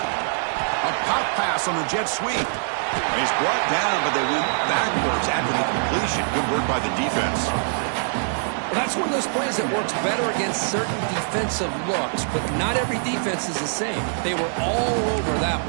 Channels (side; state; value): left; silent; digital silence